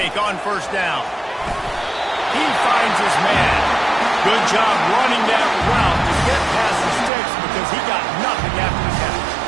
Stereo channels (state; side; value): drops out; left; at 7.1 s